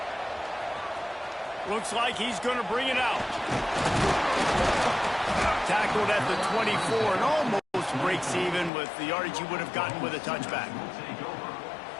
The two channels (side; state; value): right; drops out; at 8.7 s